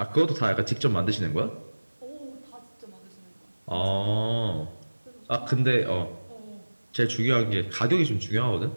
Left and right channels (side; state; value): both; inverted; correlation -1.00